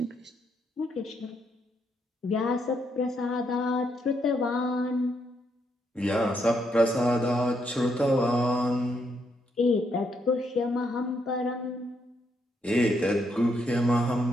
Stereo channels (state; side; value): normal; both; correlation 0.76